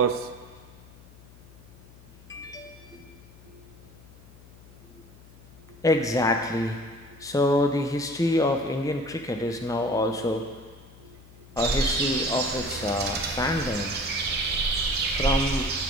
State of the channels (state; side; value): noise; left; hum, 22 dB below the sound